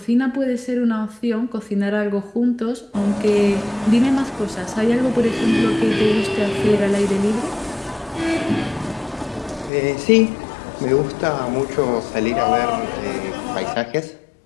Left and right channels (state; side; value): drops out; right; at 9.7 s